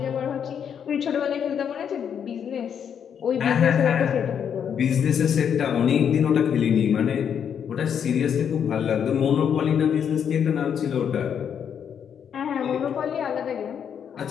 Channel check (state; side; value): quieter; right; 8.0 dB